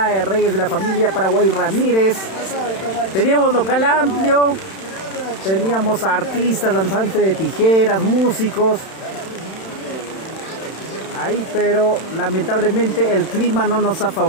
de Reyes de la familia Paraguay Ramírez. Teníamos local amplio. Teníamos artistas, danzantes de tijeras, músicos. Ahí, pero lamentablemente el clima no nos ha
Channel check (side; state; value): right; late; 31 ms